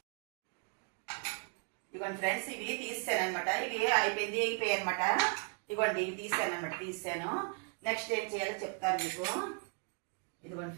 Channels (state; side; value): quieter; left; 37.3 dB